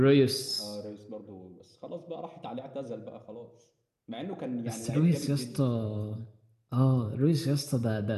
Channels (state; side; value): identical; both; correlation 1.00